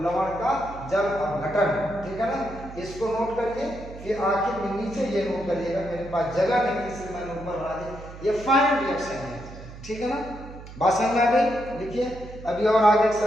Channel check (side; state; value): right; noise; hum, 15 dB below the sound